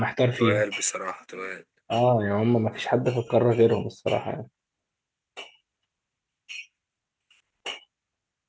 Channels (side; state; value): both; identical; correlation 1.00